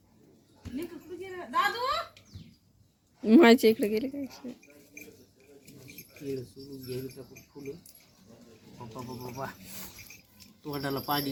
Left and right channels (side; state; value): both; identical; correlation 1.00